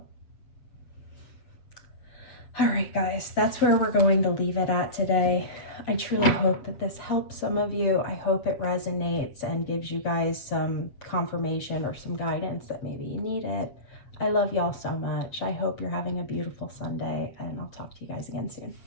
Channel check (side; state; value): right; late; 7.6 ms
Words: All right, guys, that's where we're going to leave it at today. I truly hope that this helps some of you. I hope it resonates and gives you guys some confirmation or some guidance that maybe you need it. I love y'all so much. I hope you're having a beautiful Sunday, and I'll talk to you guys again soon.